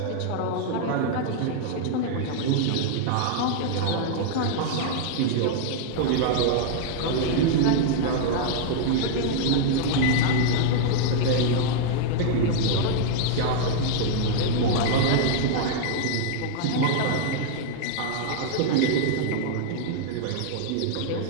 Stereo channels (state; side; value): different; both; correlation -0.01